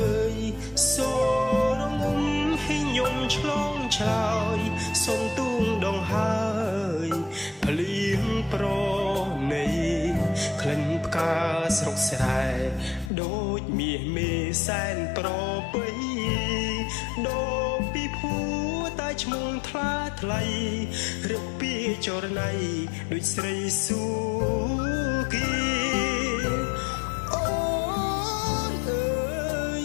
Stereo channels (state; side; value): drops out; right; at 13.1 s